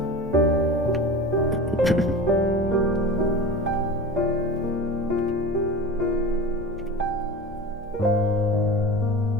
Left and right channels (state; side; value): normal; both; correlation 0.31